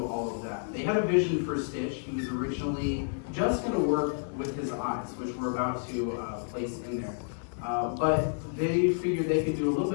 all of that. They had a vision for Stitch. He was originally just going to work with his eyes, which we're about to place in there. But they figured they could do a little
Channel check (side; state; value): right; silent; digital silence